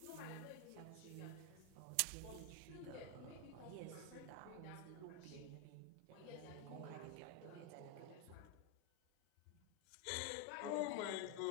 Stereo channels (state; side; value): different; both; correlation 0.01